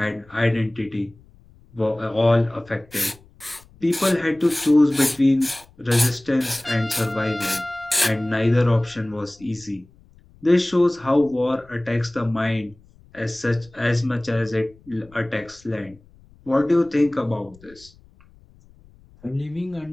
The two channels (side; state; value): left; noise; rumble, 27 dB below the sound